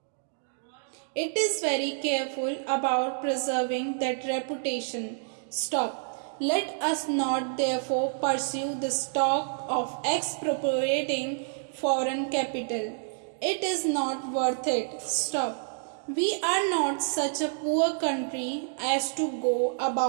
It is very careful about preserving that reputation. Stop. Let us not therefore pursue the talk of expropriating foreign capital. It is not worth it. Stop. We are not such a poor country as to go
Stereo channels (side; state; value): left; silent; digital silence